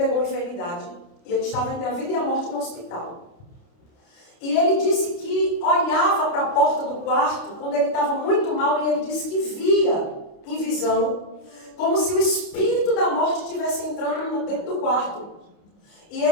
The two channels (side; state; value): right; late; 29 ms